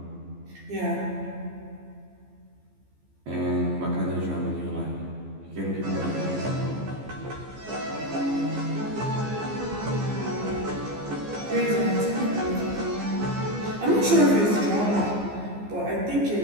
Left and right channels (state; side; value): late; left; 15 ms